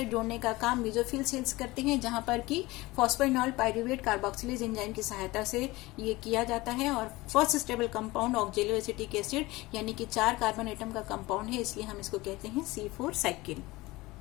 जोड़ने का काम मेसोफिल सेल्स करते हैं, जहां पर कि फॉस्फोइनॉल पाइरूवेट कार्बोक्सिलेज एंजाइम की सहायता से ये किया जाता है। और first stable compound ऑक्जेलो acetic acid यानी कि 4 कार्बन एटम का कंपाउंड है, इसलिए हम इसको कहते हैं C4 साइकिल।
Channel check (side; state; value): right; quieter; 20.6 dB